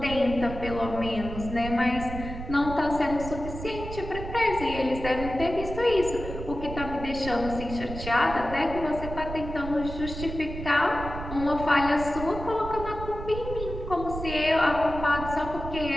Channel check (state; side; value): noise; right; rumble, 9 dB below the sound